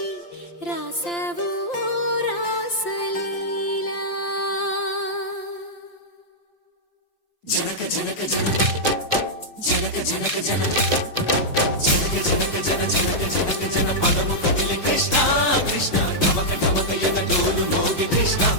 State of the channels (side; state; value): right; late; 5.8 ms